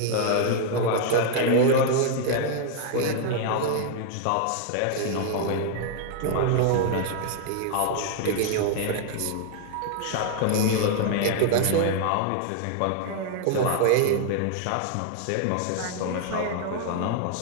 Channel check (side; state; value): both; different; correlation 0.00